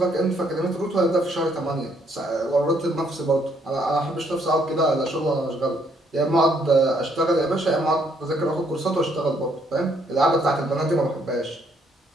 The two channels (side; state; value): both; normal; correlation 0.69